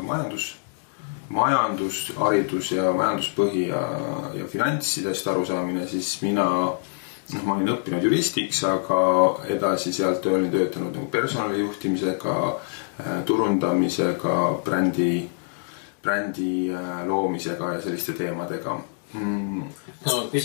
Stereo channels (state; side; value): silent; right; digital silence